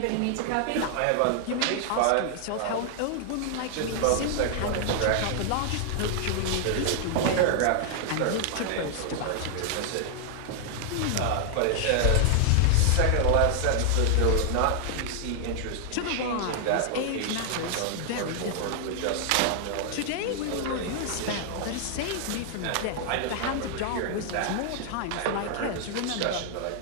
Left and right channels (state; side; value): different; both; correlation 0.00